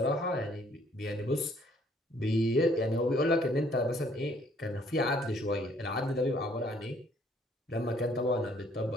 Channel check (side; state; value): both; normal; correlation 0.63